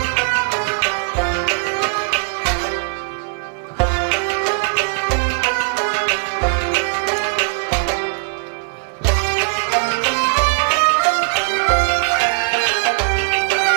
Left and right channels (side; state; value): left; silent; 56 dB below the other